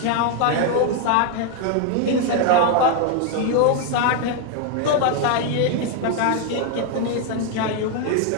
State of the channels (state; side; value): different; both; correlation 0.01